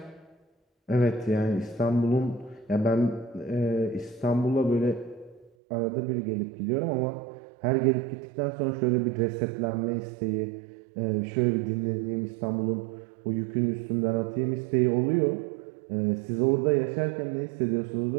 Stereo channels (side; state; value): left; drops out; at 5.5 s